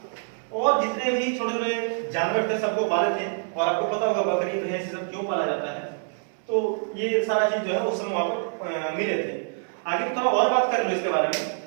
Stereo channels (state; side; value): silent; left; 61 dB below the other